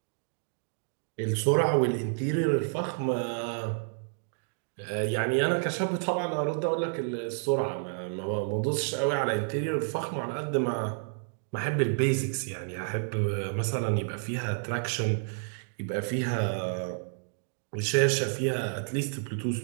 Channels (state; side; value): silent; left; digital silence